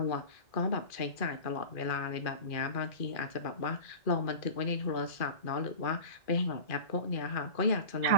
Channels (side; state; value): right; late; 2.4 ms